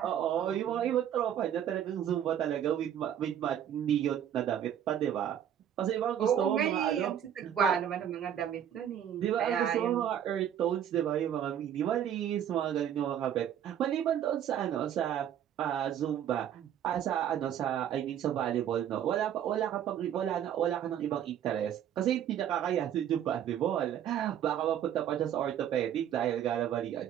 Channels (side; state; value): left; quieter; 9.9 dB